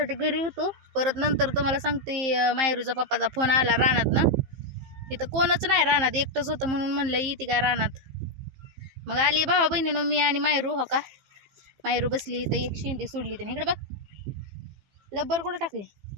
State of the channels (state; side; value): late; left; 15 ms